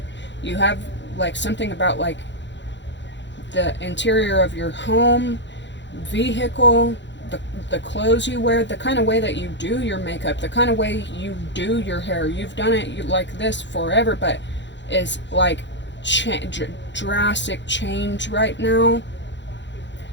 You have like something about like the interior of your home, vehicle, the clothes you wear, the kind of way that you do your makeup, the kind of way you do your hair. You've done it like this forever, but is like drastic change right now.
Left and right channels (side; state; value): right; late; 0.52 ms